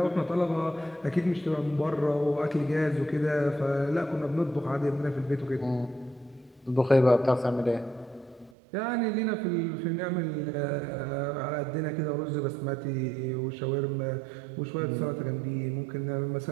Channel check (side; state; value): left; drops out; at 8.5 s